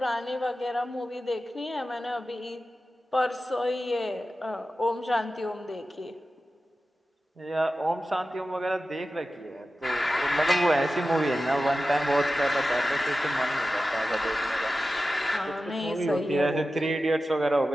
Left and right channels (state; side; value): normal; both; correlation 0.94